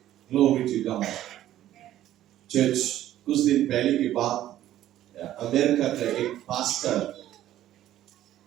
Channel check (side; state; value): left; quieter; 13.0 dB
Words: Glory to God. चर्च, कुछ दिन पहले की बात, अमेरिका का एक पास्टर